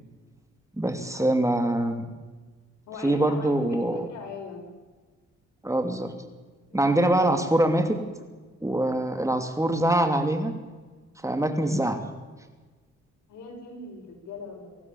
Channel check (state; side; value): normal; both; correlation 0.78